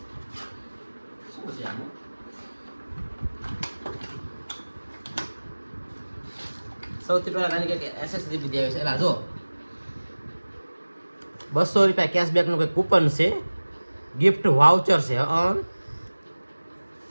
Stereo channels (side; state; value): both; inverted; correlation -1.00